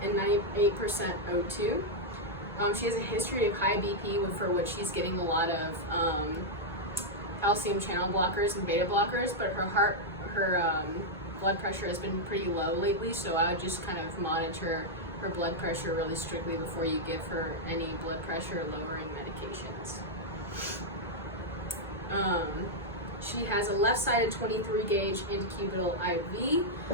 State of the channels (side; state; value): both; normal; correlation -0.03